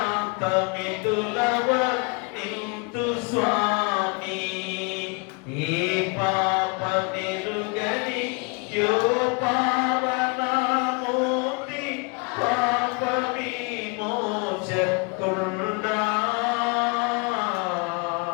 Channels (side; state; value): right; quieter; 31.6 dB